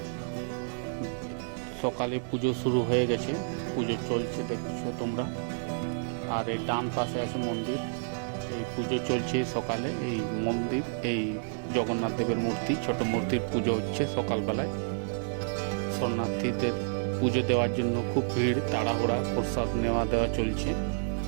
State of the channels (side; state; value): left; silent; 58 dB below the other